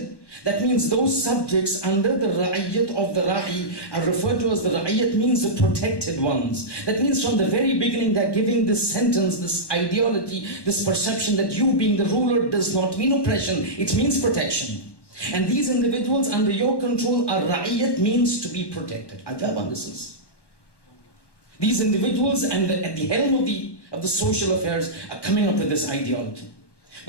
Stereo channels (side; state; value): right; late; 1.1 ms